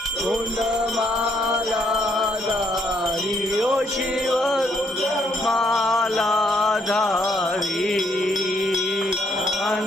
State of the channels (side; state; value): both; normal; correlation 0.71